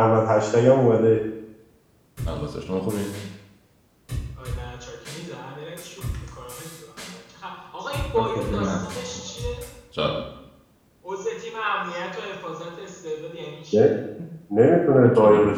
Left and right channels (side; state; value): both; identical; correlation 1.00